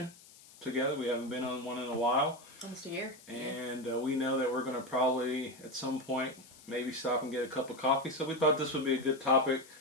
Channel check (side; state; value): left; noise; hiss, 22 dB below the sound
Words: together. We haven't been on one in a while. Almost a year. And we know that we're going to probably, at some point, maybe stop and get a cup of coffee. So we thought this would be a good topic